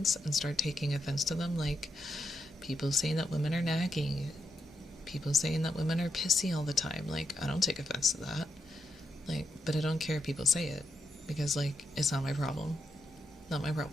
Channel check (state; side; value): normal; both; correlation 0.83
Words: and start taking offense to them, like people saying that women are nagging, people saying that women are pissy all the time, like I don't take offense to that. Like, but I don't care if people say it because like it's not my problem. Not my